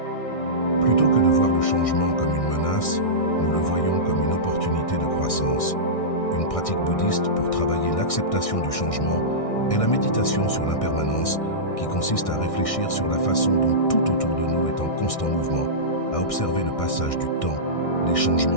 Plutôt que de voir le changement comme une menace, nous le voyons comme une opportunité de croissance. Une pratique bouddhiste pour travailler l'acceptation du changement est la méditation sur l'impermanence, qui consiste à réfléchir sur la façon dont tout autour de nous est en constant mouvement, à observer le passage du temps, les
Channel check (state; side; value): late; right; 1.6 ms